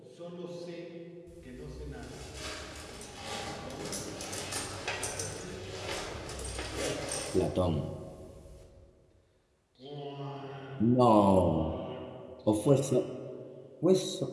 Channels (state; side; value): identical; both; correlation 1.00